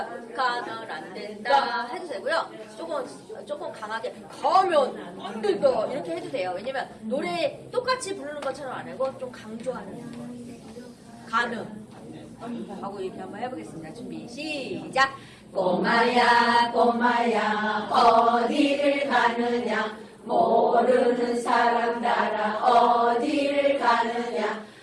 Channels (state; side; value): identical; both; correlation 1.00